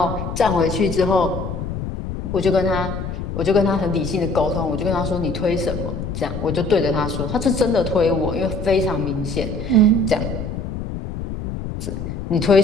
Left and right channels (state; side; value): noise; left; rumble, 6 dB below the sound